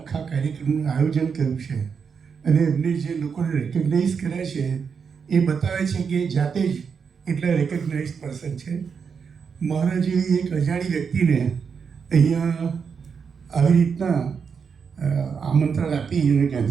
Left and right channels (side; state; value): left; quieter; 6.2 dB